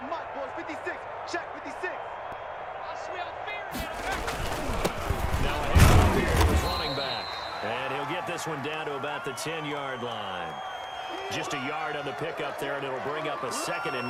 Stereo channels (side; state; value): both; identical; correlation 1.00